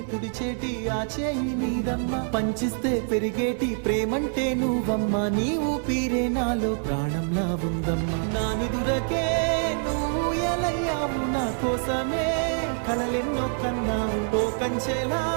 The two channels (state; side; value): silent; left; 61 dB below the other